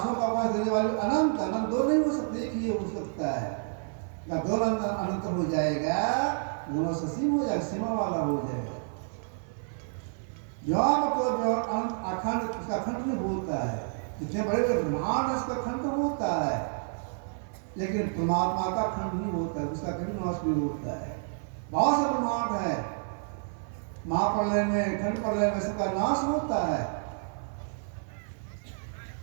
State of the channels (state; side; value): silent; left; 55 dB below the other